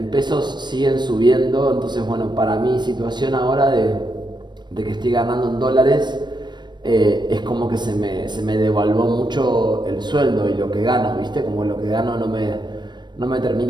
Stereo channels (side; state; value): left; late; 0.22 ms